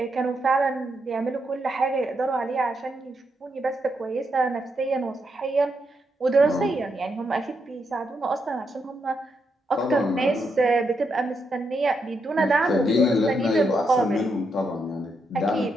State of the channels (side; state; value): both; normal; correlation 0.81